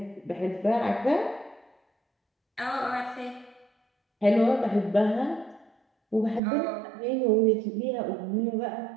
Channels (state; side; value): drops out; left; at 6.4 s